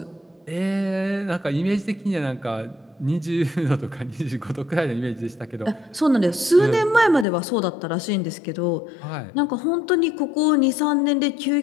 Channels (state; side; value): drops out; right; at 7.2 s